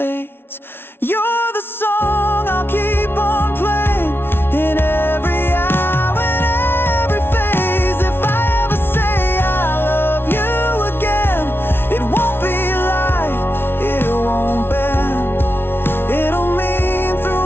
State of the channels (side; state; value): right; late; 0.11 ms